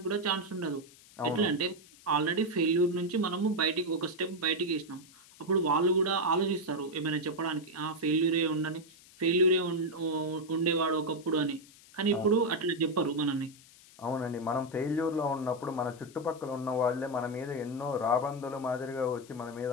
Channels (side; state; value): left; noise; hiss, 23 dB below the sound